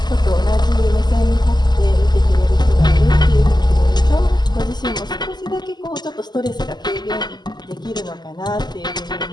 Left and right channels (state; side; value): late; right; 0.21 ms